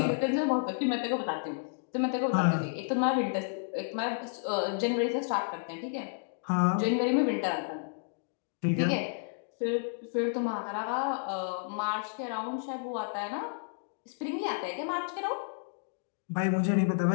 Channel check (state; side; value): silent; right; digital silence